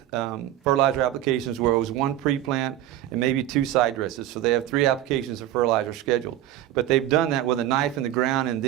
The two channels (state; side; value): quieter; left; 12.8 dB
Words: fertilizer applications, where it was 1 pre-plant and maybe 2 side dresses. So they have 3 applications of fertilizer scheduled. But they've done that with a knife in the ground and